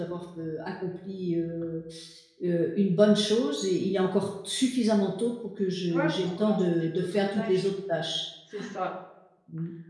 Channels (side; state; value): both; identical; correlation 1.00